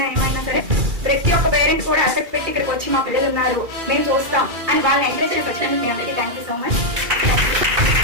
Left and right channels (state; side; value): late; left; 2.3 ms